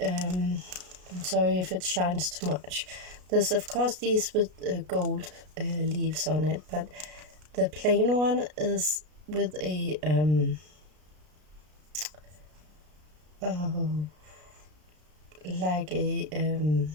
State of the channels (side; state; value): left; late; 33 ms